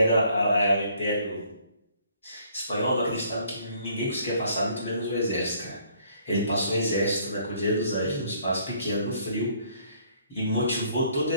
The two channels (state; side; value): inverted; both; correlation -0.62